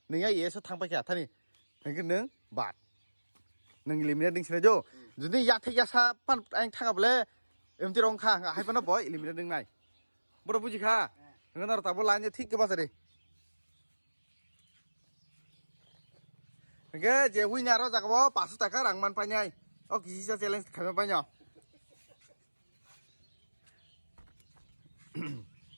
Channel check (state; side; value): inverted; both; correlation -1.00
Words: nengai yes tang pakai tani, hingga neng bat. Neng eliminate ding sini jo, jadi ya thek ya sa pan ang thang able, em ti rong kha, hai pan boy eliminate ding nai, boro buji kha, neng nor tabo lain je thik ke pas re, neng je win nyaro jaga bo pasu taka rang man panyai, oh kisi sa challenge kami panyo,